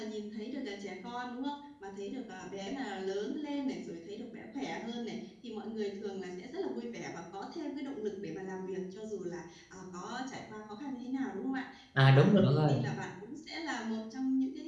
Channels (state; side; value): identical; both; correlation 1.00